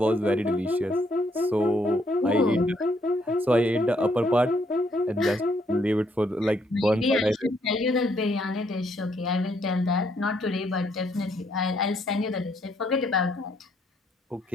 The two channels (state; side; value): normal; both; correlation 0.71